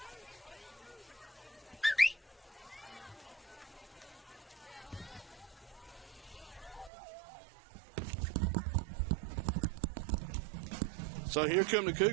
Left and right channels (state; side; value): drops out; left; at 6.9 s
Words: So here come the